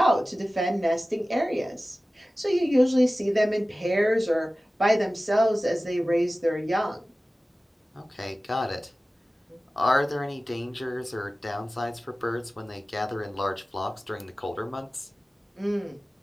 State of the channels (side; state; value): both; normal; correlation 0.96